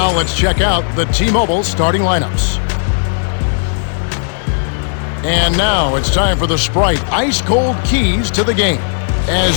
let's check out the T-Mobile starting lineups. And now it's time for the Sprite ice-cold keys to the game.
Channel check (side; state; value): right; silent; digital silence